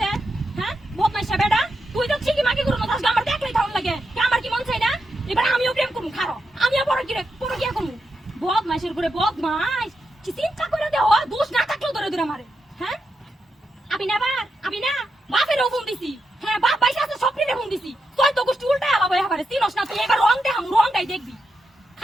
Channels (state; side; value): normal; both; correlation 0.85